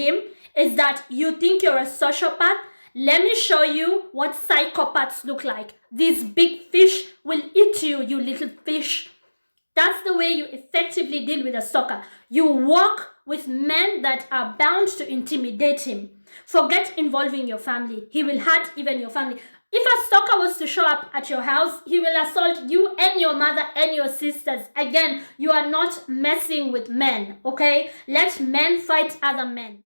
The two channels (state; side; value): inverted; both; correlation -1.00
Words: is that you think you're a sociopath. Let me show you what psychopaths look like. These big fish will eat you, you little fish. That's the way you effectively deal with a stalker. You walk with men that are bound to intimidate him. Forget involving your family. He will hurt even your family. If a stalker was to show up at your house, he will assault you and your mother and your sisters. Again, you are not messing with men, okay? Let men fight other men.